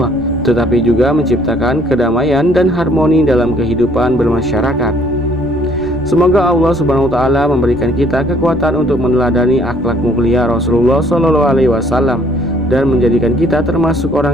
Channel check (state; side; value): noise; right; rumble, 18 dB below the sound